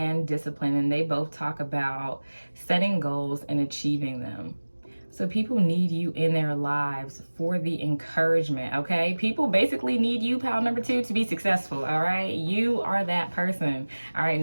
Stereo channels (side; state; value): both; inverted; correlation -1.00